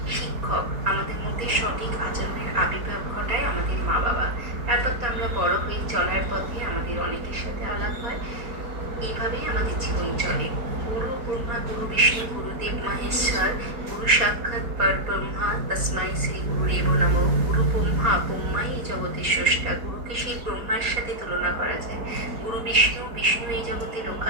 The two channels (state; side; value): late; left; 4.2 ms